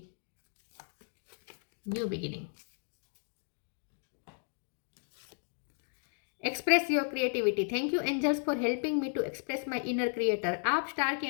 new beginning. Express your creativity, thank you angels for helping me to express my inner creator. आप स्टार की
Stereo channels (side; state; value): right; silent; 55 dB below the other